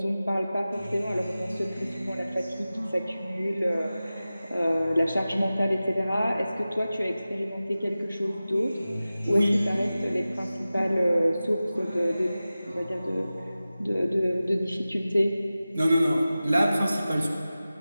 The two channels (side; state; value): both; inverted; correlation -0.96